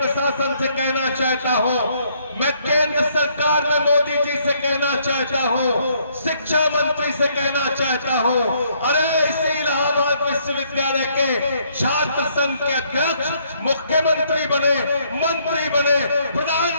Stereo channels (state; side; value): inverted; both; correlation -0.68